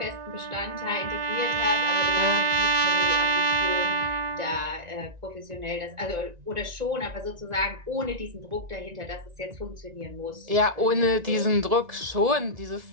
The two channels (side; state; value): left; late; 1.9 ms